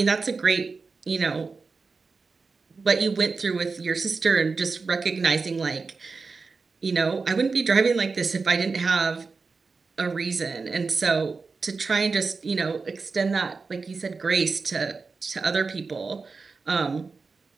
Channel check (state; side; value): quieter; left; 4.4 dB